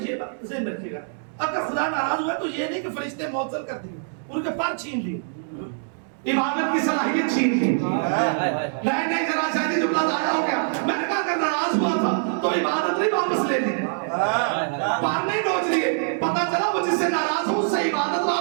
بات ذہن میں رکھیے گا، اگر خدا ناراض ہوا تو یہ نہیں کہ فرشتے معطل کر دیے، ان کے پر چھین لیے، عبادت کی صلاحیت چھین لی. نہیں ذرا شاید یہ جملہ ضائع ہو گیا. میں نے کہا اگر ناراض ہوا تھا تو عبادت نہیں واپس لے لی، پار نہیں نوچ لیے. پتا چلا وہ جس سے ناراض ہو اس سے عبادت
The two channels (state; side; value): silent; left; digital silence